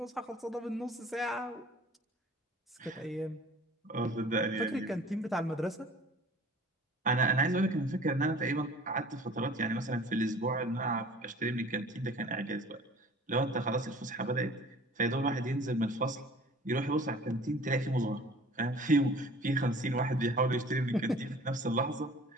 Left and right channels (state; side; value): normal; both; correlation 0.47